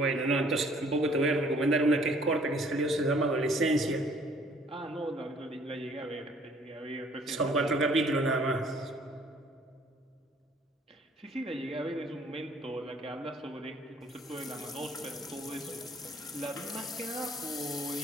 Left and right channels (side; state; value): both; normal; correlation 0.58